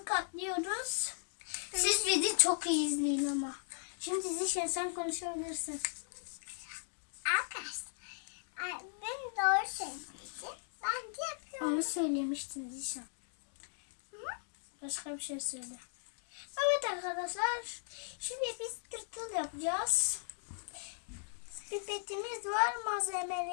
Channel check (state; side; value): silent; right; digital silence